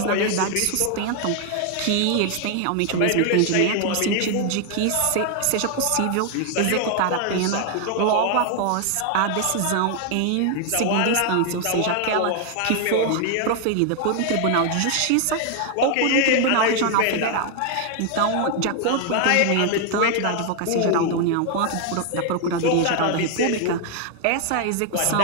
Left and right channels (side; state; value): both; different; correlation 0.00